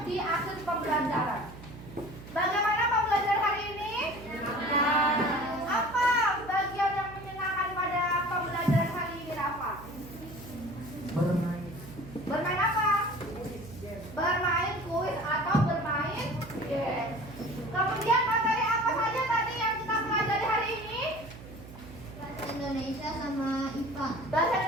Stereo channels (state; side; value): noise; right; hum, 16 dB below the sound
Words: di akhir pembelajaran. Bagaimana pembelajaran hari ini? Apa bagian yang menyenangkan pada pembelajaran hari ini, Rafa? Bermain. Bermain apa? Bermain kuis atau bermain game. Kemudian materi apa saja tadi yang kita pelajari hari ini? Bahasa Indonesia sama IPA. Bahasa